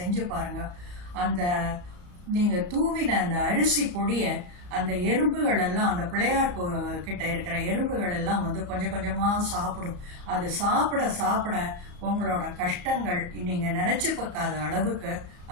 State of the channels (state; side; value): late; left; 34 ms